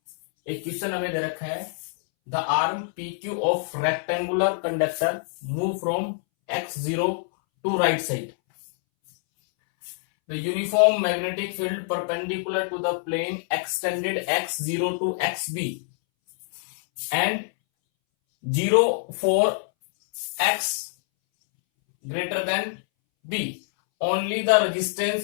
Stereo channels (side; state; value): right; silent; 61 dB below the other